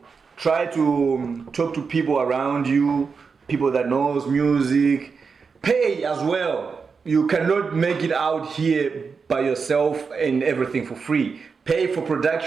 try to talk to people around you, people that knows music. Pay as well. You cannot make it out here by yourself and everything for free. Pay for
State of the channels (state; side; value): quieter; left; 5.3 dB